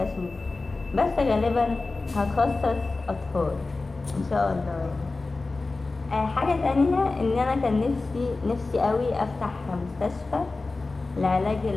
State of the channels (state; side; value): quieter; right; 3.5 dB